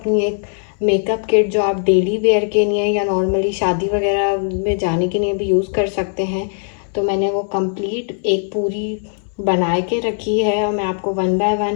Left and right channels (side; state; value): right; silent; digital silence